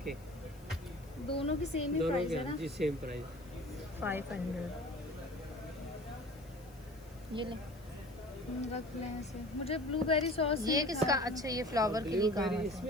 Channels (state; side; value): noise; left; hiss, 26 dB below the sound